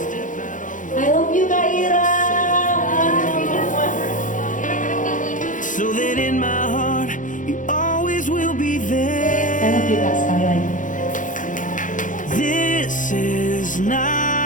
I love you Kak Ira. So that in my heart you always will be there. I love you Kak sekali lagi. This is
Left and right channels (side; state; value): right; late; 0.38 ms